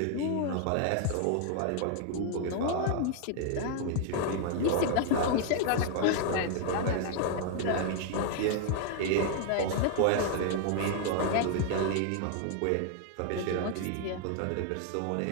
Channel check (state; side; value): different; both; correlation 0.00